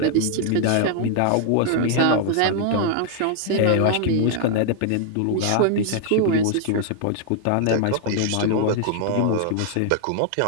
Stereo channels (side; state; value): both; different; correlation 0.00